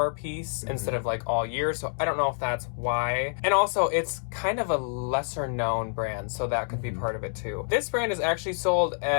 piece instead of like all year, so I don't know if that's why. And also, it's kind of a lesser known brand, so that could be part of it too. This brand is actually sold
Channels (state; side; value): silent; right; digital silence